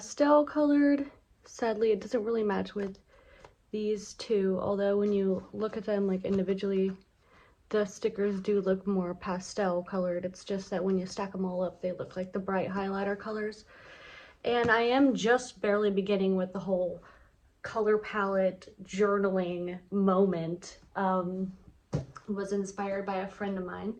colored. Sadly, it doesn't really match with these two, although when you look at them like individually, the stickers do look more pastel colored. It's just that when you stack them all up, they look like the bright highlighter colors. And I am just barely beginning with the whole color palette journaling moment. Was inspired by a friend of mine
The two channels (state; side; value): identical; both; correlation 1.00